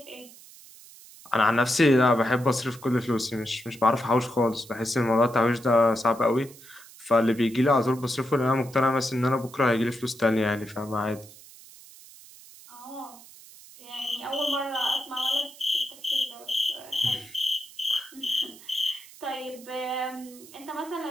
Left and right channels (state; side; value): noise; right; hiss, 20 dB below the sound